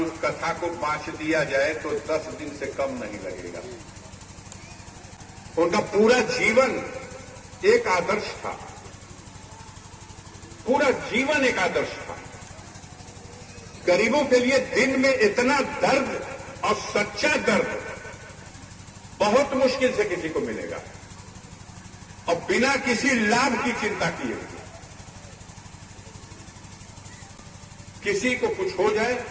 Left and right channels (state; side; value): identical; both; correlation 1.00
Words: कथा को बांट दिया जाए तो 10 दिन से कम नहीं लगेगा। उनका पूरा जीवन एक आदर्श था, पूरा जीवन एक आदर्श था। गरीबों के लिए दिन में इतना दर्द और सच्चा दर्द बहुत मुश्किल से किसी को मिलेगा, और बिना किसी लाभ की चिंता किए हुए। किसी को कुछ हो जाए,